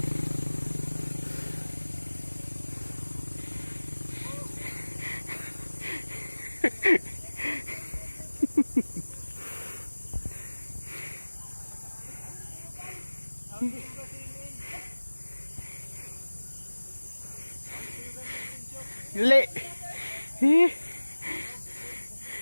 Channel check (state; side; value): inverted; both; correlation -1.00